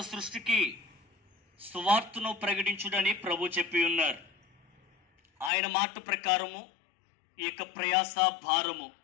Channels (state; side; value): drops out; right; at 5.5 s